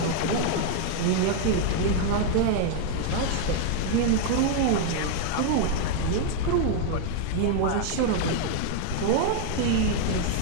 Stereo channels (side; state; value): both; different; correlation 0.00